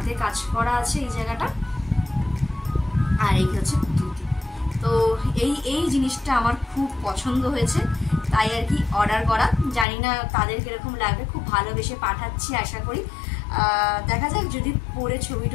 কাজ করা আছে এই জায়গাটা, আর এই হচ্ছে ধুতি। তো এই জিনিসটা আমার খুব পছন্দ হয়েছে, তাই আর কি অর্ডার করা। জানি না তাদের কিরকম লাগবে, খুব ভালোবেসে পাঠাচ্ছি আশা করি। দেখা যাক, যদি পরে ছবি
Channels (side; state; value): right; drops out; at 9.9 s